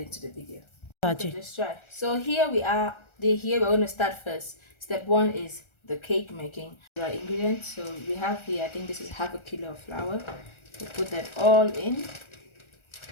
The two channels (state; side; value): late; right; 1.3 ms